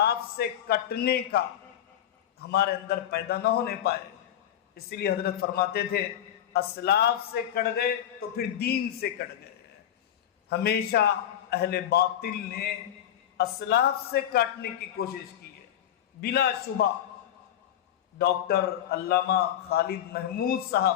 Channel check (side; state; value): right; quieter; 10.8 dB